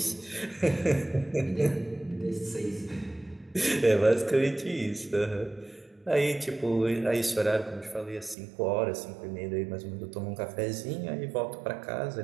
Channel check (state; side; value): drops out; left; at 8.3 s